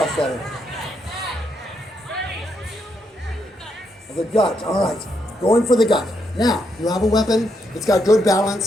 at it. The gut, all right. Going for the gut. Now, you have a weapon. It's got good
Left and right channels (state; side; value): normal; both; correlation 0.78